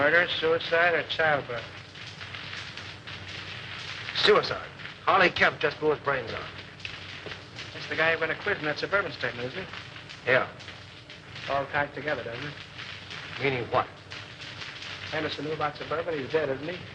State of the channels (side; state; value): both; identical; correlation 1.00